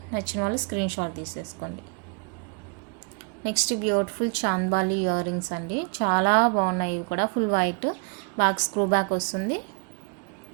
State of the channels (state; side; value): quieter; left; 35.5 dB